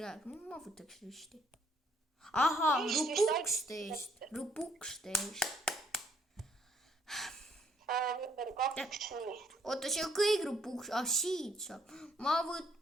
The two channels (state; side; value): normal; both; correlation 0.67